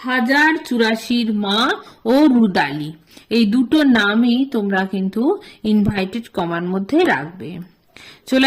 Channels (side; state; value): both; identical; correlation 1.00